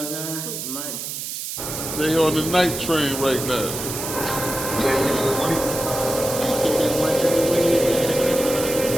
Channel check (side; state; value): right; noise; hiss, 6 dB below the sound